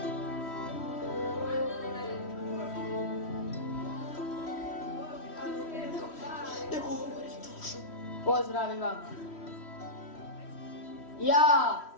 Pozdravi vam. Ja,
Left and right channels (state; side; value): late; right; 3.1 ms